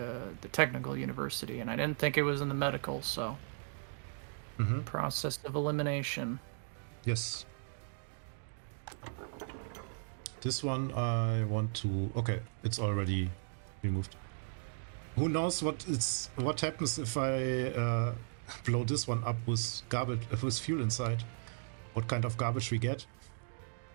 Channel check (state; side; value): silent; left; digital silence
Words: technical university, and I didn't think it was in the medical. So process of elimination. yes. This one I want to. Okay, it's already removed. Who knows what happens if I blow this one up with garbage with fuel inside? What kind of garbage we get?